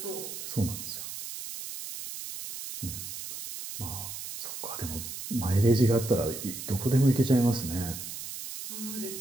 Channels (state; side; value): noise; right; hiss, 8 dB below the sound